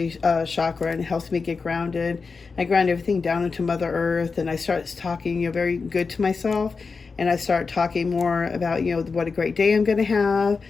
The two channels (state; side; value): quieter; right; 4.7 dB